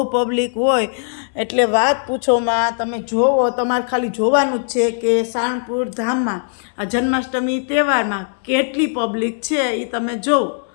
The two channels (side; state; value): right; silent; 64 dB below the other